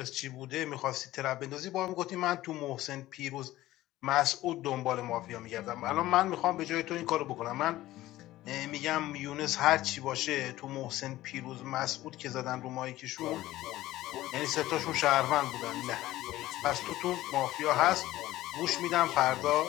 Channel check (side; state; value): right; quieter; 15.9 dB